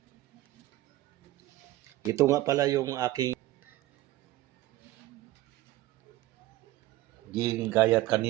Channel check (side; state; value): left; quieter; 16.6 dB